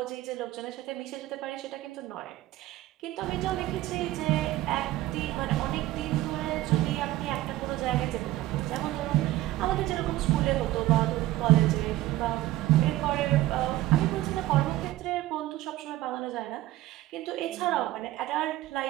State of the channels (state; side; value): quieter; left; 16.1 dB